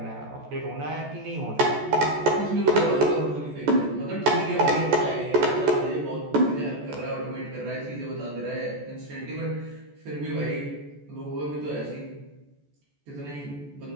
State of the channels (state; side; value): late; left; 14 ms